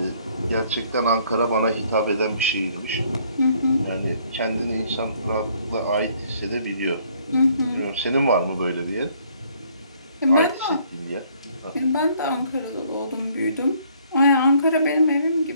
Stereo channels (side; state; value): both; inverted; correlation -0.63